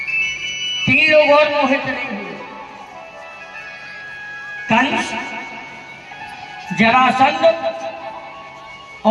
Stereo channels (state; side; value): identical; both; correlation 1.00